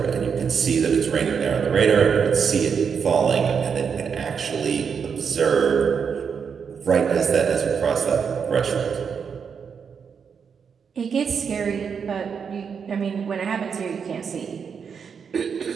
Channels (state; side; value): quieter; left; 6.5 dB